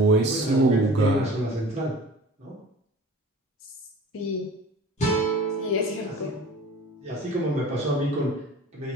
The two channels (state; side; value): normal; both; correlation 0.42